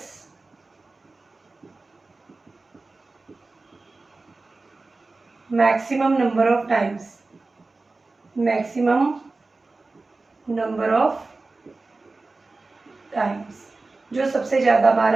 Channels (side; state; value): left; quieter; 3.5 dB